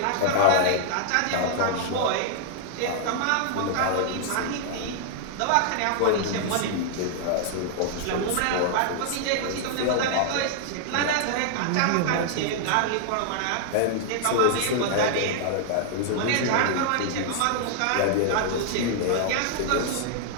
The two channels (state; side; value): different; both; correlation 0.00